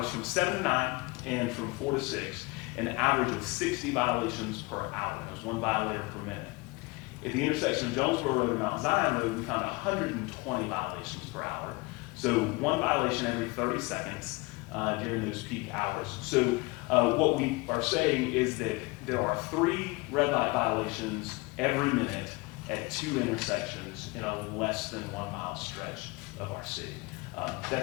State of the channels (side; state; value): right; quieter; 25.3 dB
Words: from 7 to 9 and from 4 to 6, an average of 60 violations per hour. That was 1 violator per minute. At the intersection of Jonesboro Road and Mount Zion Road, we found 120 violations per hour. So 1 violation every 30 seconds during those peak hours. So what we are saying is that there are 3 red light violations every minute at 2 intersections in a less than 1 mile stretch of our city.